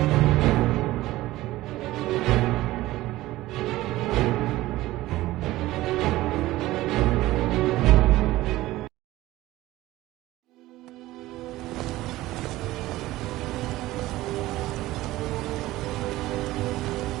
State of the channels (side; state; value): left; quieter; 17.1 dB